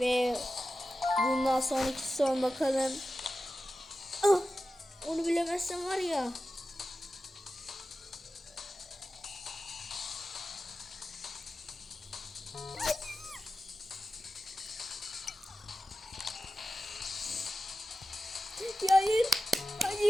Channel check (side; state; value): both; normal; correlation 0.93